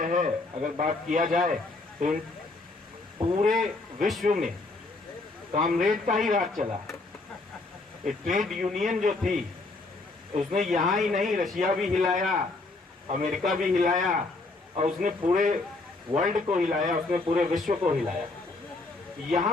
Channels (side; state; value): right; quieter; 3.3 dB